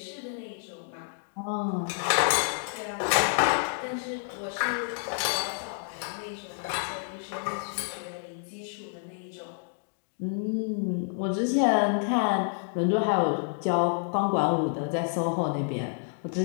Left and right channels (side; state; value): right; silent; digital silence